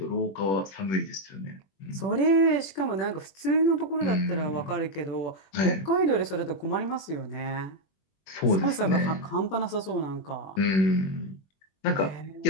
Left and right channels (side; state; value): right; late; 21 ms